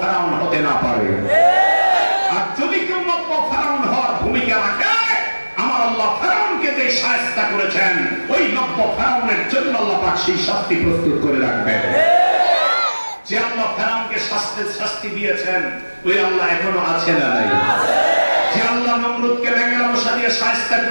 হতে না পারে। আর যদি কেউ নব্য ফেরাউন হওয়ার ভূমিকা রাখে, আমার আল্লাহ ফেরাউনকে যে শায়েস্তা করেছেন, ওই নব্য ফেরাউনের জন্য আল্লাহ পাক সেই শাস্তি প্রস্তুত করে রাখবেন। যে আল্লাহ ফেরাউনকে শাস্তি দিয়েছেন, ওই আল্লাহ এখনো আছে না নাই? যে আল্লাহ নমরুদকে ব্যাঙের মশা দিয়ে শায়েস্তা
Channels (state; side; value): inverted; both; correlation -1.00